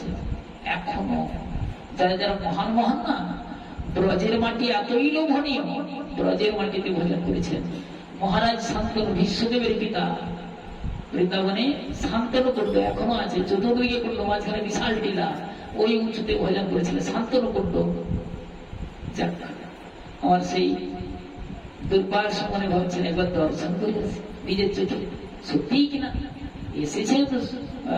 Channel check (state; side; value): identical; both; correlation 1.00